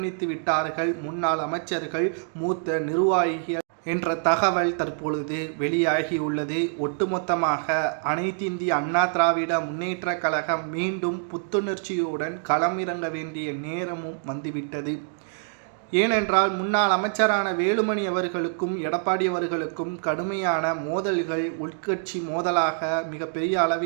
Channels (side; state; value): left; silent; digital silence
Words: விட்டார்கள் முன்னாள் அமைச்சர்கள், மூத்த நிர்வாகிகள் என்ற தகவல் தற்பொழுது வெளியாகியுள்ளது. ஒட்டுமொத்தமாக அனைத்திந்திய அண்ணா திராவிட முன்னேற்ற கழகம் மீண்டும் புத்துணர்ச்சியுடன் களமிறங்க வேண்டிய நேரமும் வந்துவிட்டது. ஏனென்றால் முன்னாள் அமைச்சரான வேலுமணி அவர்களுக்கும் எடப்பாடி அவர்களுக்கும் கடுமையான மோதல்கள், உட்கட்சி மோதலாக மிகப்பெரிய